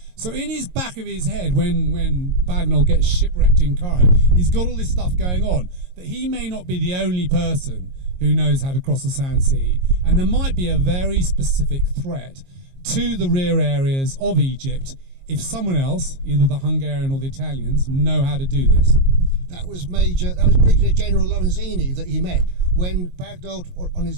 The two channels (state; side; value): late; left; 22 ms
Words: So in his back of his head, when Bagnold gets shipwrecked in Cairo, he's got all this stuff going on, that he may not be the only person who knows how to cross the Sand Sea, and there might be a very specific threat to the rear areas of Egypt if someone else, either the Hungarian or the Italians, know how to do this. That was Brigadier General Lorenzini that he met when Bagnold, on